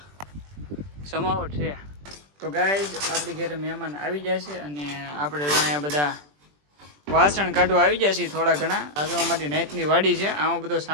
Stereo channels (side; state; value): left; late; 20 ms